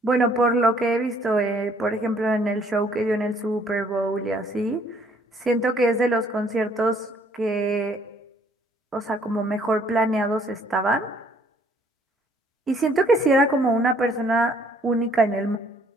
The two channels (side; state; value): both; normal; correlation 0.62